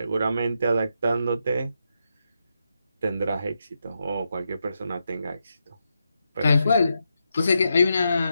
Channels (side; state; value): both; inverted; correlation -0.85